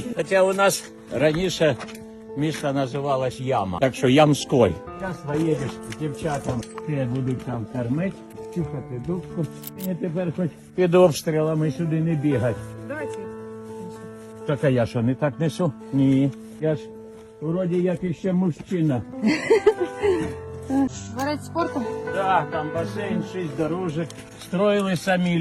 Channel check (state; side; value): identical; both; correlation 1.00